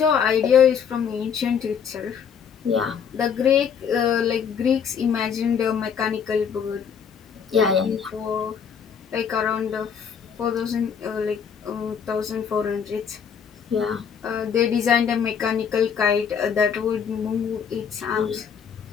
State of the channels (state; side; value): quieter; right; 7.2 dB